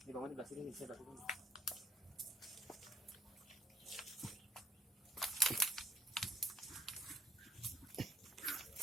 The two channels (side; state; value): both; normal; correlation 0.62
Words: Ini bangun di belah sini nih, saya belah sini.